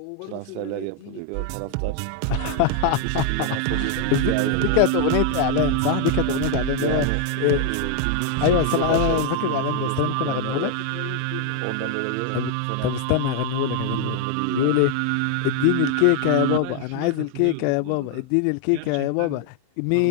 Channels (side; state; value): both; different; correlation 0.00